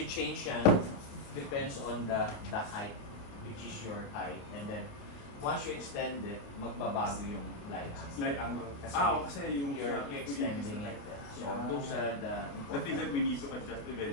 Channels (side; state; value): right; late; 28 ms